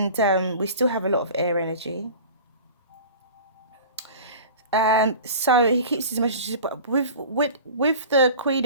we still have a lot of air energy. So he keeps his emotions, but with the Queen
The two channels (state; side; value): inverted; both; correlation -0.39